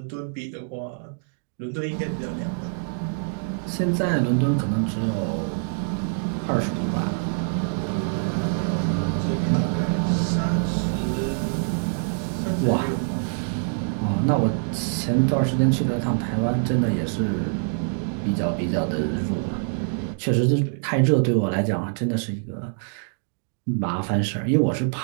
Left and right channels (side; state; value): left; silent; digital silence